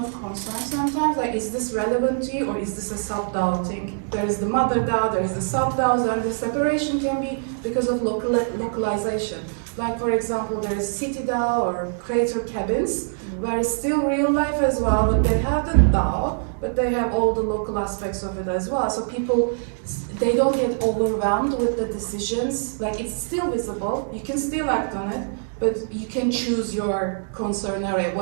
concerns sometimes, like is this relevant to you or is this a sub-DAO thing? There is the mother DAO, there is the sub-DAOs, and the separation can be because of localization. Like for example, there is city DAO or creator cabins, where it's still real life as well, but they have the DAO, but they have all the local aspects of it as well. So people, they don't get overwhelmed with the decisions. Like it's still visible, you can still act on it, but you can choose your concern area,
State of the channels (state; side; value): silent; left; digital silence